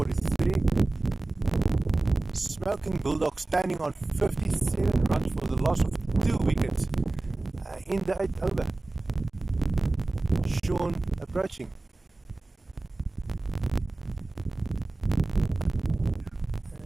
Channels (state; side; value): quieter; left; 3.0 dB